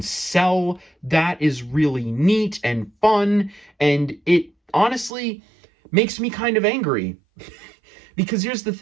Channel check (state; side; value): drops out; left; at 5.1 s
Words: cell. That is really neat and fun, and it honestly makes me kind of angry. Because here's the